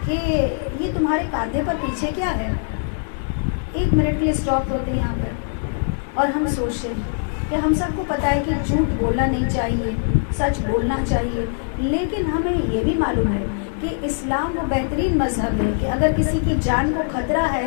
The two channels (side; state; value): right; silent; digital silence